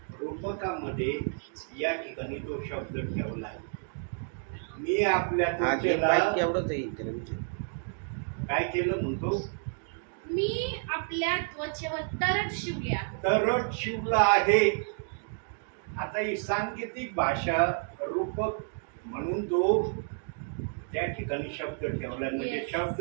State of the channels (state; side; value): silent; left; 58 dB below the other